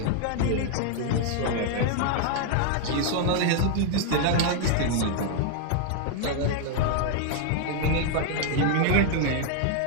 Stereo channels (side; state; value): both; different; correlation 0.00